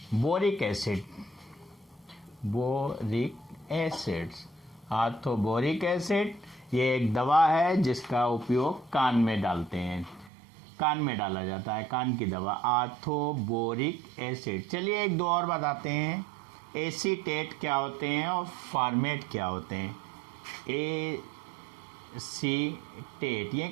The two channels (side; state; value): left; drops out; at 10.3 s